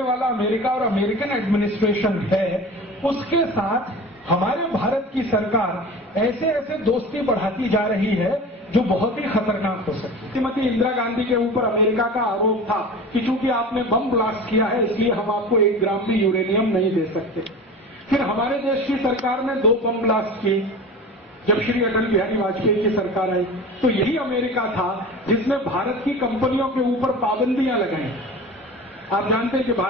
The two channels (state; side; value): normal; both; correlation 0.35